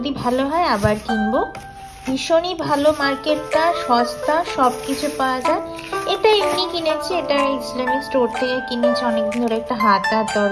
ভালো হয় আবার কিনবো। ভীষণই ভালো মার্কেটটা, সস্তা, সব কিছু পাওয়া যায়। এটা এমনি কিনেছি, এটা ইসলামিক স্টোর থেকে কিনেছি, অনেকদিন ধরে একটা হাতার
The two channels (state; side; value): identical; both; correlation 1.00